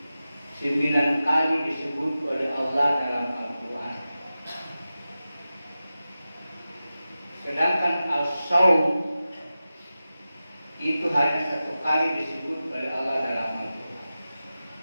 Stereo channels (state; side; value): inverted; both; correlation -0.94